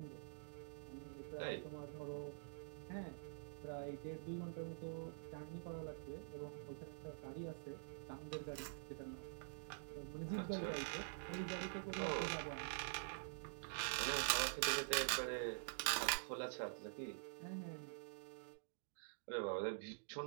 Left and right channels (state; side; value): silent; left; digital silence